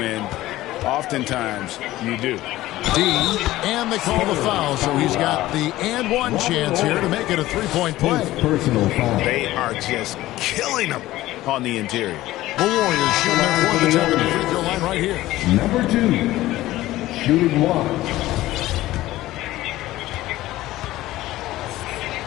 oftentimes you do. D, and they call the foul, so he's got the and one chance here to make it a three-point play. Personal foul. They are just killing them on the interior. The Warriors shooting their fourth attempt at the free throw line right here. Number 2, shooting 1.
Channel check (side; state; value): right; quieter; 16.2 dB